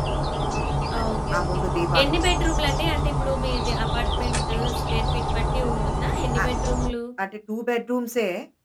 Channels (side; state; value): both; identical; correlation 1.00